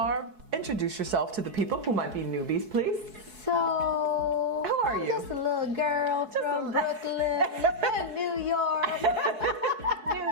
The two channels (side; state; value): left; late; 4.7 ms